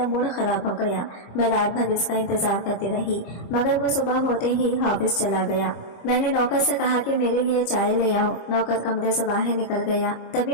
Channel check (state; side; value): late; right; 25 ms